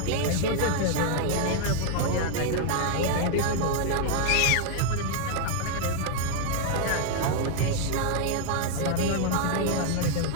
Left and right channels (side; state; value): both; different; correlation 0.00